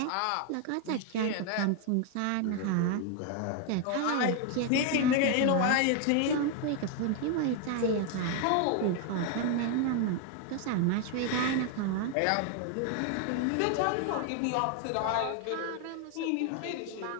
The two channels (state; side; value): different; both; correlation 0.01